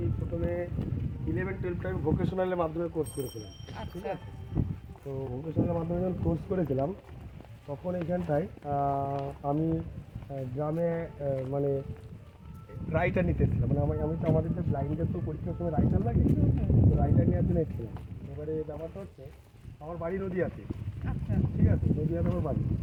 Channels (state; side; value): identical; both; correlation 1.00